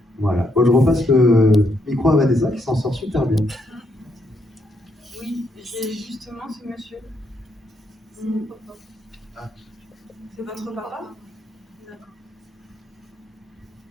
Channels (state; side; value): normal; both; correlation 0.76